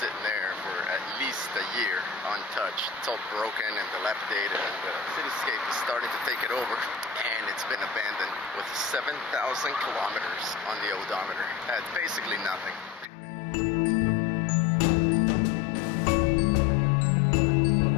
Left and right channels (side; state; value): right; drops out; at 13.1 s